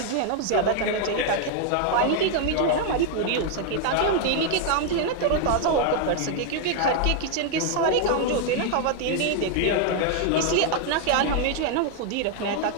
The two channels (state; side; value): different; both; correlation 0.00